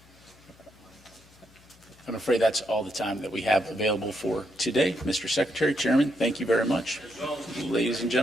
I'm afraid that's all the time that we have available for today. Mr. Secretary, Chairman, thank you very much. Ladies and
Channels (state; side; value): noise; left; hum, 27 dB below the sound